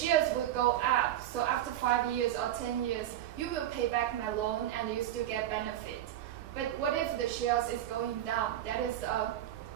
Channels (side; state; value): left; quieter; 12.2 dB